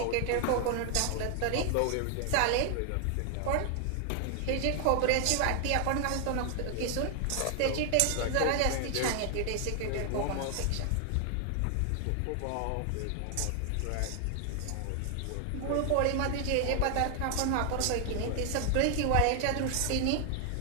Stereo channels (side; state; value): both; different; correlation 0.00